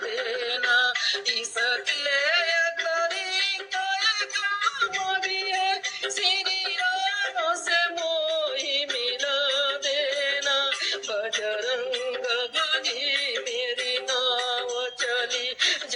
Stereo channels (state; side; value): identical; both; correlation 1.00